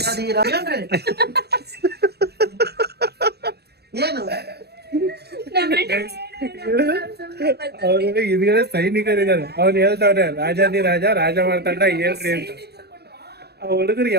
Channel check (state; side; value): late; left; 0.47 ms